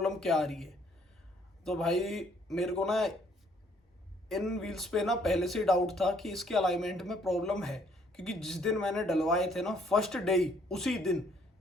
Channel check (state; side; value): normal; both; correlation 0.65